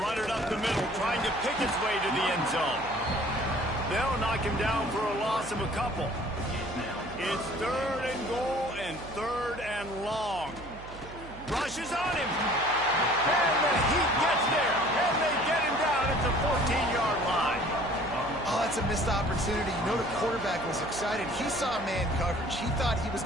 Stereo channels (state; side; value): noise; right; hum, 15 dB below the sound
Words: run it up the middle, trying to pick its way to the end zone. They'll knock him down for a loss of a couple. It's 3rd and goal and 3rd and long. Rushes on him. And the Heat gets there. And they get him down at the 14-yard line. Oh, that's a missed opportunity. You know the quarterback was excited. He saw man coverage. He thought he was